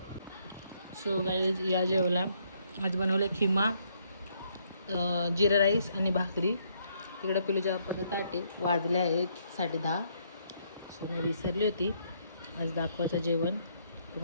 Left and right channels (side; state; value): both; inverted; correlation -0.71